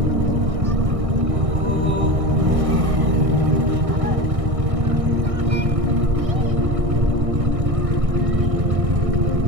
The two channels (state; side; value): late; left; 1.6 ms